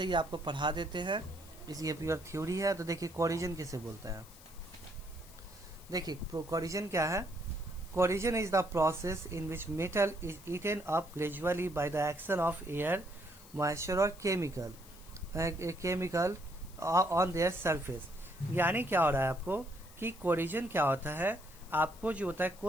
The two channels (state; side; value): noise; left; hiss, 21 dB below the sound